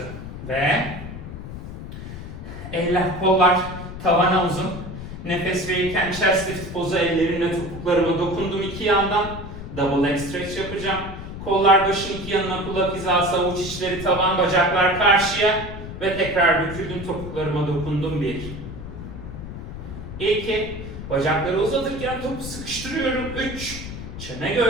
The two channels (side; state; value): left; noise; rumble, 10 dB below the sound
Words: ve eller, kollar tavana uzun. Nefes verirken chest lift pozu, ellerimle topuklarıma dokundum iki yandan. Double leg stretch yapacağım. Kollar başın iki yanına, kulak hizası, avuç içleri tavan, bacaklar karşıya ve tekrar büküldüm, topuklarıma dokundum 1 2 bacakları uzatırken topu sıkıştırıyorum 3 çene